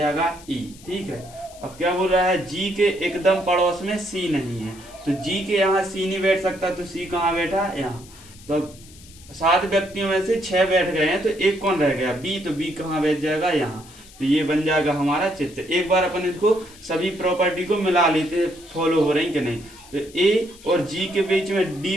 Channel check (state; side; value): noise; left; hiss, 22 dB below the sound